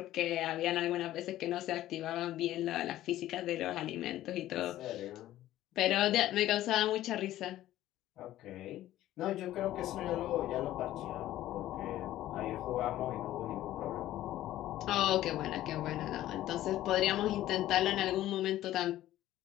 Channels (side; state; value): right; quieter; 14.1 dB